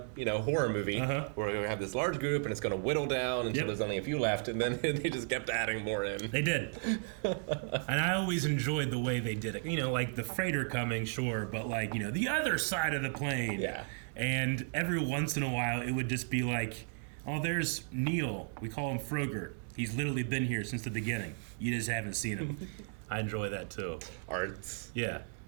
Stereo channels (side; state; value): left; silent; 55 dB below the other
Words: horror movie where we're going to have this large group and it's going to whittle down until there's only a few left. And then they just kept adding more in. They did. And I always enjoyed the way they did it. You know, like the freighter coming, sure, but like, you know, the other side of the plane. Yeah. And every once in a while, it would just be like, oh, there's Neil. We call him Frogert. He's literally been here since the beginning. You just haven't seen him. I enjoy that too. Arts. Yeah.